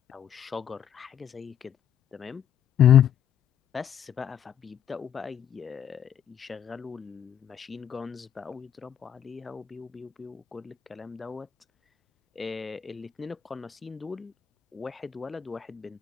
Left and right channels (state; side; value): quieter; right; 9.4 dB